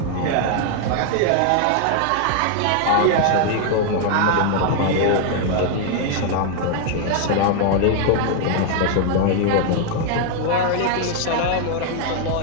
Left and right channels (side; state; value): both; different; correlation 0.00